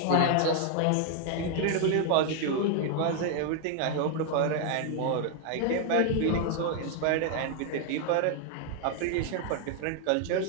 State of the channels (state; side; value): different; both; correlation 0.00